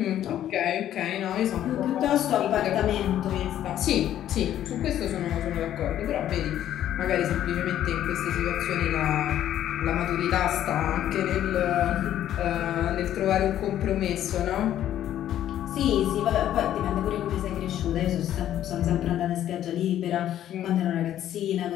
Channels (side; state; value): right; quieter; 11.6 dB